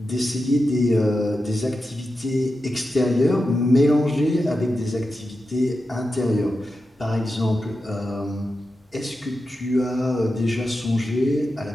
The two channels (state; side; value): normal; both; correlation 0.90